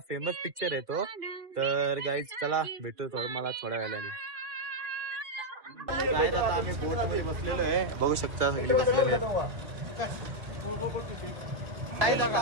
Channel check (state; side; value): late; left; 2.2 ms